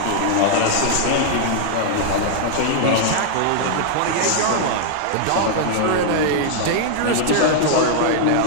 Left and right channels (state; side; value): different; both; correlation -0.01